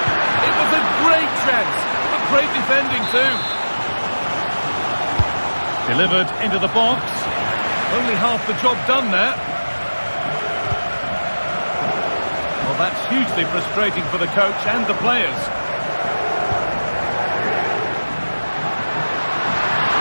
It was a great chance. A great defending too. Delivered into the box. Only half the job done there. Well, that's hugely frustrating for the coach and the players.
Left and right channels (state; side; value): inverted; both; correlation -1.00